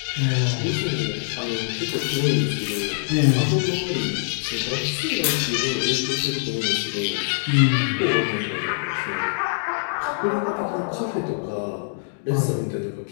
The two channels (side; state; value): right; silent; digital silence